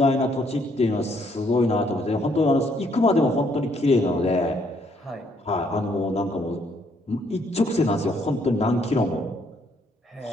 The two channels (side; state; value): both; normal; correlation 0.69